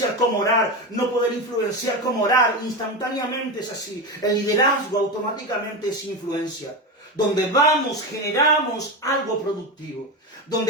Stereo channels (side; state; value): both; normal; correlation 0.18